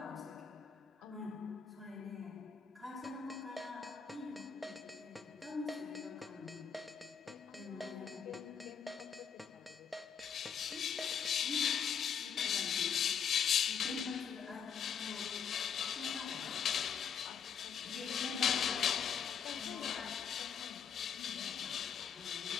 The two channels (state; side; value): quieter; right; 7.3 dB